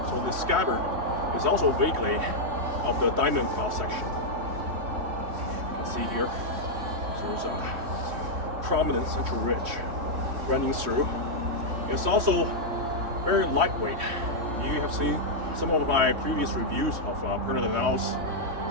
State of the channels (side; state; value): left; late; 3.1 ms